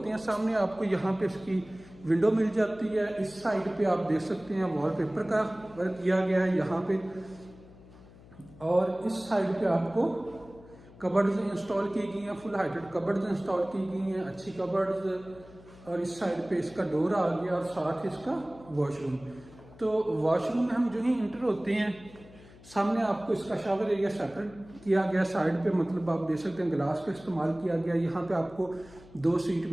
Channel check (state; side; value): noise; left; hum, 22 dB below the sound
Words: हैं सामने आपको यहाँ पे इसकी विंडो मिल जाती है। इस साइड पे आप देख सकते हैं वॉलपेपर का वर्क किया गया है यहाँ पे, और इस साइड पे आपको कबर्ड्स इंस्टॉल की गई हैं, फुल हाइटेड कबर्ड्स इंस्टॉल की गई हैं, अच्छी कबर्ड्स। और इस साइड पे इसका डोर आ गया और साथ इसका वॉशरूम। तो वॉशरूम में हम जो ही इंटर होते हैं सामने आपको इसका शावर एरिया सेपरेट किया गया साइड पे, मतलब आप देख सकते हैं ग्लास का इस्तेमाल किया गया। यहाँ पे आपको 2 सीट